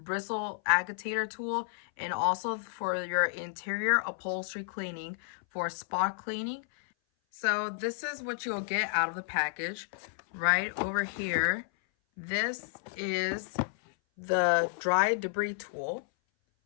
agitator tool, and also for your interior upholstery cleaning for spot cleaning. So this is what you'll get out of the package. Right over here, this is the dry debris tool,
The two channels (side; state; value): right; silent; 57 dB below the other